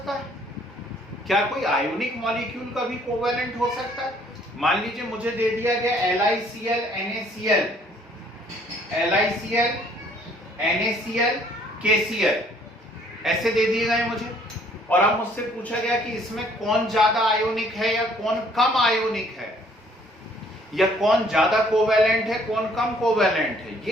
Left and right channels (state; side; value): normal; both; correlation 0.61